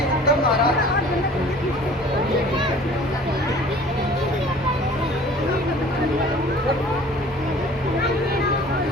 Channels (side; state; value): both; normal; correlation 0.48